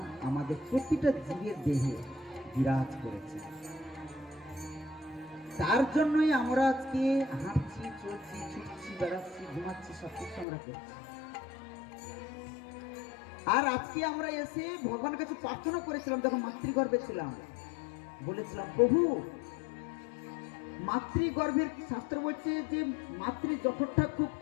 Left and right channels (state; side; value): drops out; right; at 10.5 s